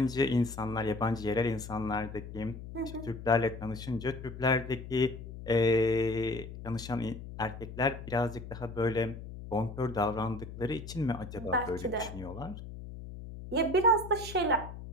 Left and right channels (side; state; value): left; noise; hum, 11 dB below the sound